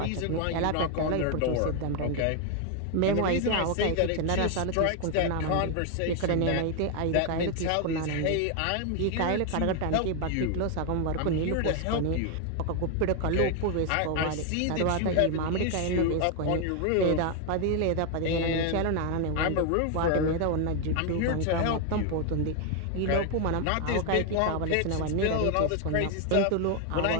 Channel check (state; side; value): different; both; correlation 0.01